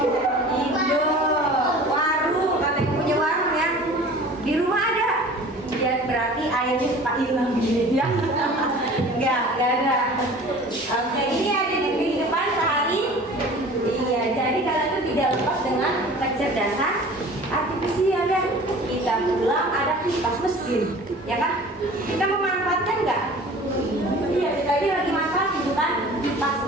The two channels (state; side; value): normal; both; correlation 0.43